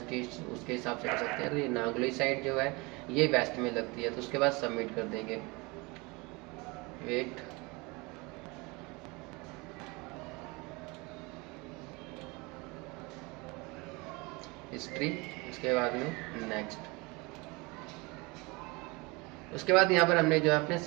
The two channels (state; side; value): quieter; left; 25.9 dB